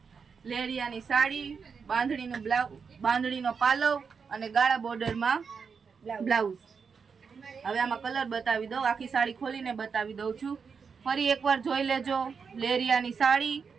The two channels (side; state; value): left; quieter; 5.8 dB